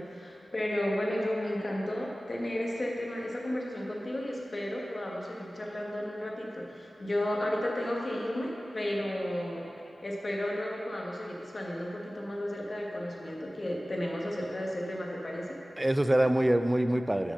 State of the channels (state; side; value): normal; both; correlation 0.97